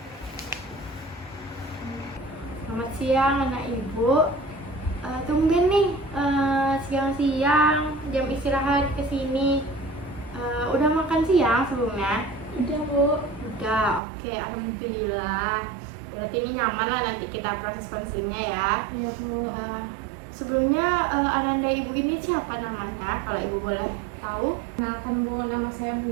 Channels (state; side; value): drops out; left; at 14.0 s